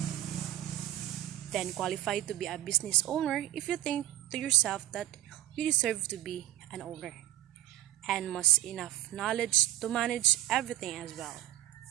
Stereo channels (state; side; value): quieter; left; 13.9 dB